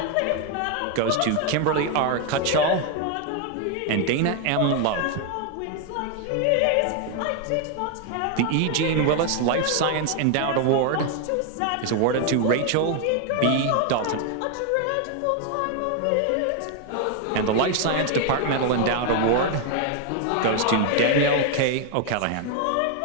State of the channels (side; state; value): both; different; correlation 0.01